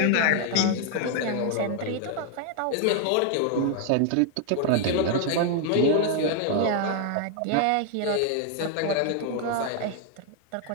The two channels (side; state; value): both; different; correlation 0.00